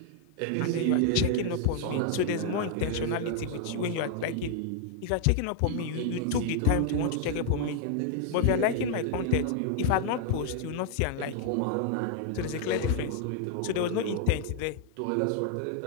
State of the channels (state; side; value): different; both; correlation 0.00